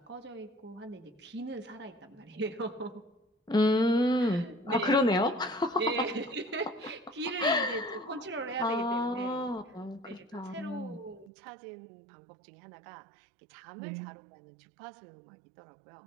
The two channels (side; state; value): left; drops out; at 11.3 s